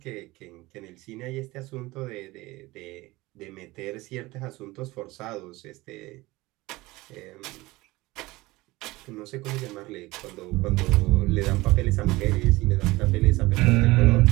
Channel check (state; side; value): quieter; left; 20.5 dB